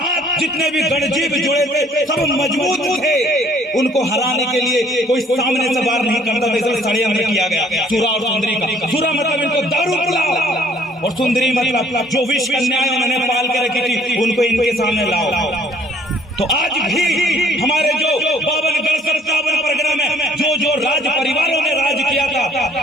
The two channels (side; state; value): both; normal; correlation 0.60